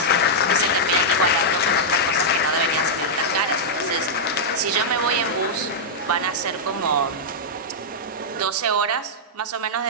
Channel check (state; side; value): normal; both; correlation -0.06